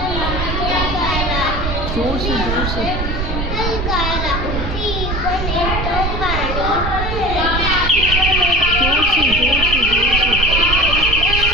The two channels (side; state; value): right; noise; rumble, 3 dB below the sound